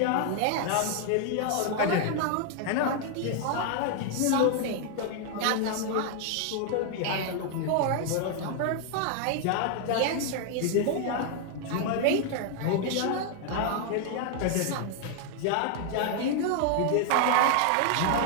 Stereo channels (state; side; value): different; both; correlation 0.00